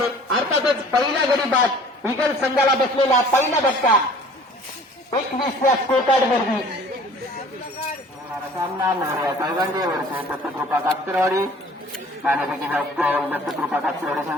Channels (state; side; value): normal; both; correlation 0.50